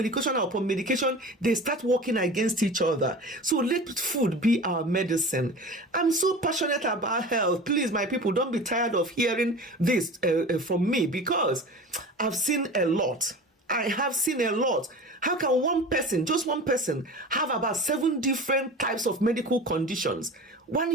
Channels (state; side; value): normal; both; correlation 0.35